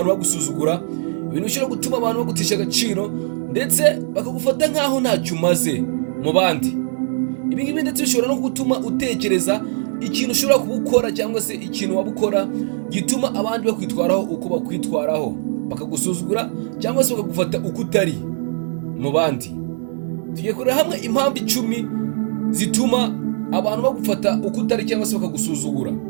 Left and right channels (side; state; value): left; silent; 55 dB below the other